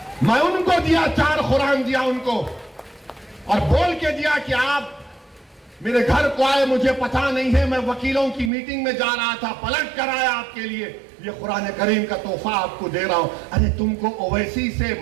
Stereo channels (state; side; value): drops out; left; at 8.5 s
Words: मैं उनको दिया, 4 कुरान दिया उनको और बोल के दिया कि आप मेरे घर को आए, मुझे पता नहीं है, मैं वकीलों की मीटिंग में जा रहा था, पलट कर आया आपके लिए, ये कुरान करीम का तोहफा आपको दे रहा हूं। अरे तुमको ओवैसी से